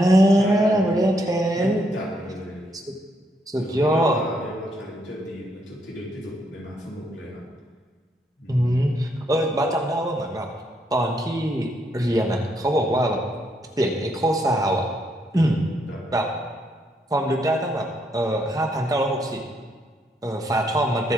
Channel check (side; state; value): both; normal; correlation 0.74